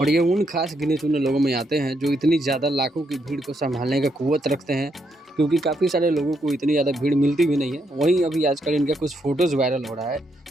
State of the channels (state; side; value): normal; both; correlation 0.77